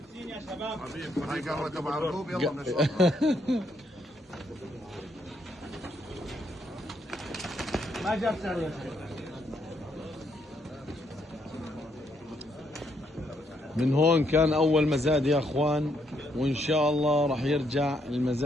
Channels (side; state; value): both; normal; correlation 0.74